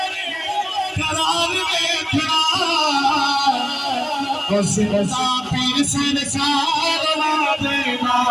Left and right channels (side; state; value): both; identical; correlation 1.00